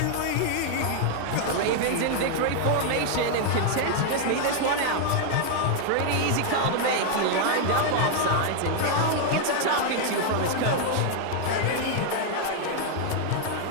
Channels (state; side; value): different; both; correlation 0.00